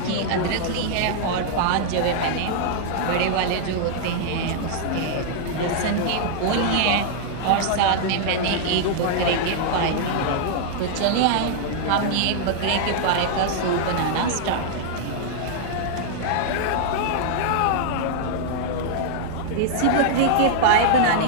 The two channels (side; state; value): both; different; correlation -0.01